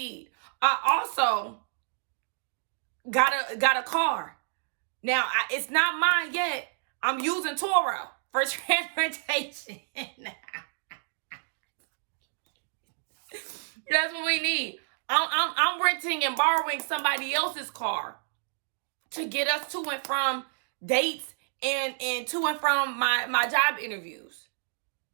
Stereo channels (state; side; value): silent; left; digital silence